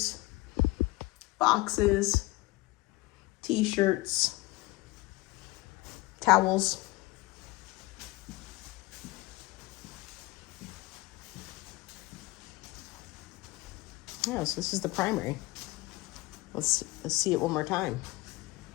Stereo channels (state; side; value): quieter; right; 20.9 dB